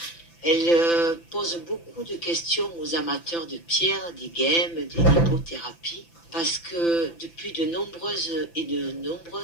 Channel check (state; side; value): late; right; 5.9 ms